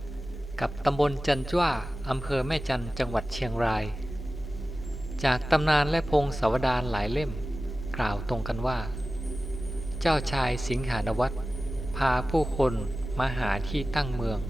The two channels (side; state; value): both; normal; correlation 0.95